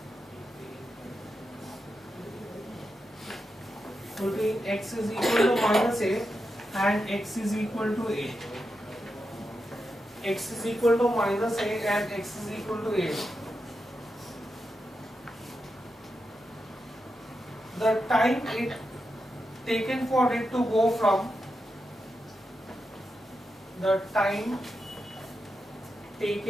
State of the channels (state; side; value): normal; both; correlation 0.87